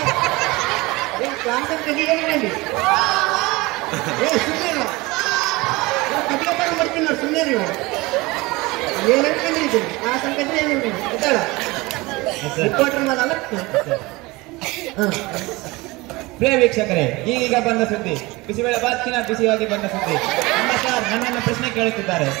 ಕ್ಲಾಸ್ ಅಂತ ಏನಿಲ್ಲ ಸುಮ್ಮನೆ ಕಟ್ಕೊಂಡು ಬರ್ತೀನಿ ನೋಡಿ. ಸುಮ್ಮನೆ ರೀ ಏನು ಅನ್ಕೊಂಡಿದ್ದೀನಿ ಕ್ಲಾಸ್ ಅನ್ಕೊಂಡ್ರೆ ಏನು ಗೊತ್ತಾಳ ರಿಪೋರ್ಟರ್ ಮಾಡಲ್ಲ. ಹಾಂ ಪ್ರಿಯ ವೀಕ್ಷಕರೇ, ಈಗೀಗ ಬಂದ ಸುದ್ದಿ, ಬಿಸಿಬೇಳೆ ಬಾತ್ಕಿನ ಬಿಸಿಯಾಗಿ ಬಂದ ಸುದ್ದಿ. ನಮ್ಮ ಸರ್ ನನ್ನನ್ನು ಪ್ರಶ್ನೆ ಕೇಳುತ್ತಿದ್ದಾರೆ.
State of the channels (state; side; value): quieter; left; 22.5 dB